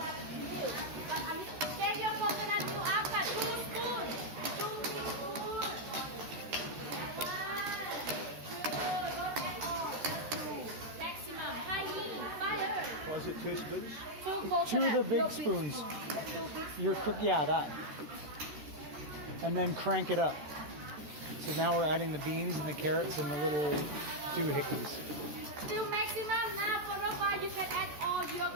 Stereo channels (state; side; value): late; left; 13 ms